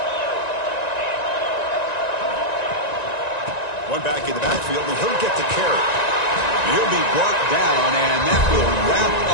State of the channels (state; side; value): late; right; 1.9 ms